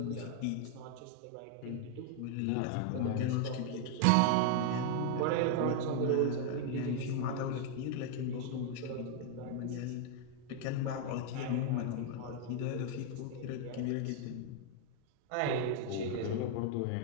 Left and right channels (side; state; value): both; different; correlation 0.00